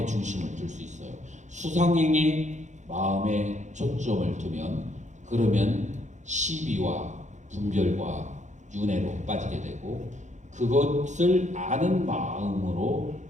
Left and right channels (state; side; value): late; left; 0.35 ms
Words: 중심을 둘 수 있어요. 수상행에 마음에 초점을 두면 그러면 시비와 분별과 윤회로 빠지게 되고 그것을 아는 마음으로